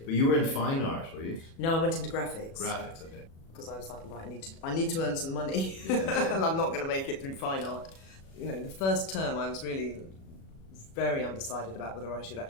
But you were in fine art, were you? No, I went into graphics. Graphics, okay. Because I was like, right, I need to earn some money, and I'm not going to make it through fine art. The first term I was really very undecided about whether I should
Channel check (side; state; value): right; late; 37 ms